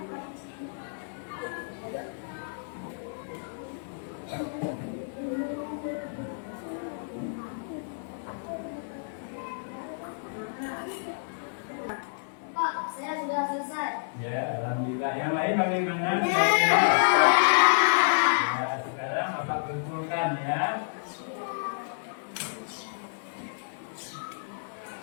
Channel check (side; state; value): right; silent; 58 dB below the other